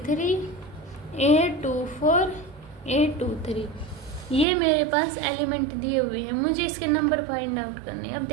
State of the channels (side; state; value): left; drops out; at 4.5 s